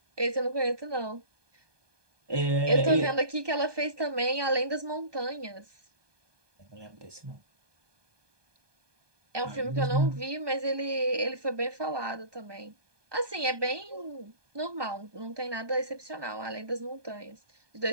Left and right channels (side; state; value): left; late; 1.2 ms